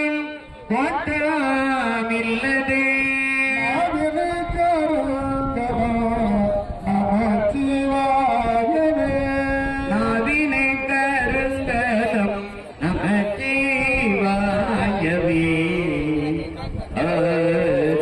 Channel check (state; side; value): identical; both; correlation 1.00